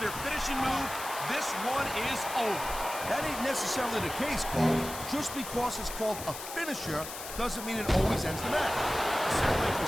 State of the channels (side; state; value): left; noise; hiss, 10 dB below the sound